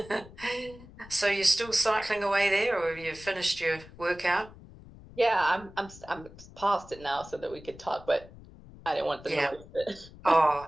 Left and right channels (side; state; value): left; noise; rumble, 19 dB below the sound